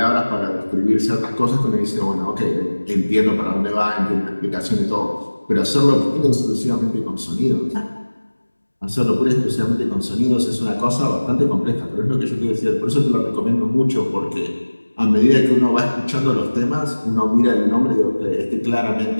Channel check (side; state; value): both; inverted; correlation -1.00